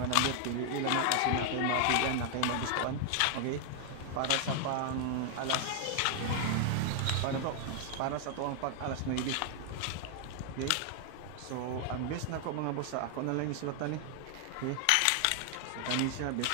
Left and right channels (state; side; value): different; both; correlation 0.00